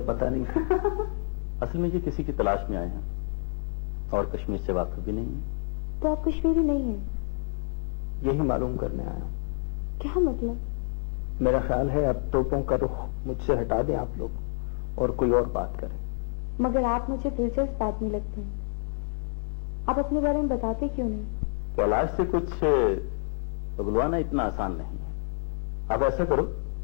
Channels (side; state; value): right; silent; 59 dB below the other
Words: पता नहीं था। असल में ये किसी की तलाश में आए हैं और कश्मीर से वाकिफ भी नहीं है। तो आप कश्मीरी नहीं हैं? यही मालूम करने आया हूँ। क्या मतलब? मेरा ख्याल है अब तोपों का रुख मुझसे हटा दें आप लोग और कोई और बात करें। मगर आप मुझे दिलचस्प आदमी लगते हैं, आप अपने बारे में बताते क्यों नहीं? कैलाश से कुछ उगलवाना इतना आसान नहीं है। आप ऐसा करो,